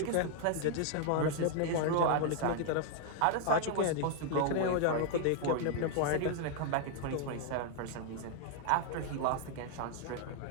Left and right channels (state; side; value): different; both; correlation 0.00